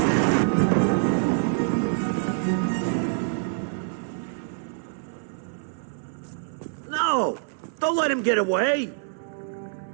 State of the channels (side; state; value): left; silent; 59 dB below the other